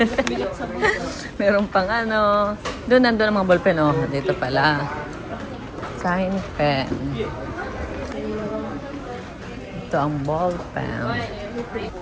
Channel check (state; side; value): identical; both; correlation 1.00